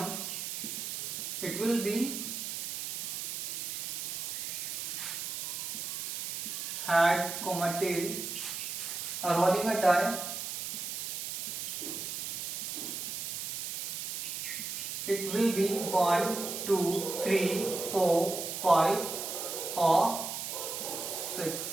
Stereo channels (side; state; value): right; noise; hiss, 4 dB below the sound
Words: it will be head, tail. Rolling a die, it will be 1, 2, 3, 4, 5 or 6.